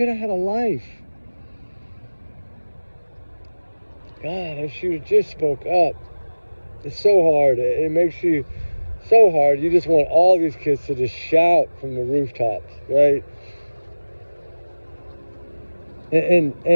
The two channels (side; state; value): both; inverted; correlation -1.00